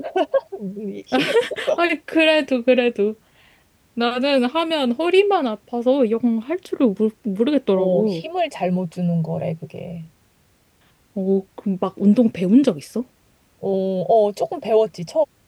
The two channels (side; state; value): both; identical; correlation 1.00